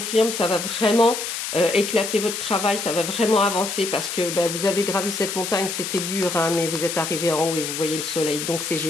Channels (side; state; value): left; noise; hiss, 5 dB below the sound